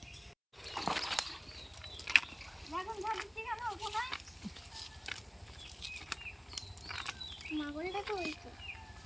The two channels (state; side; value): identical; both; correlation 1.00